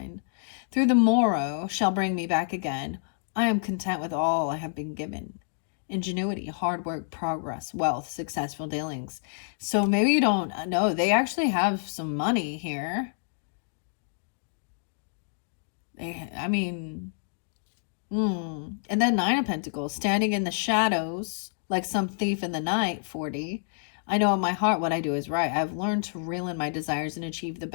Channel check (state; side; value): silent; right; digital silence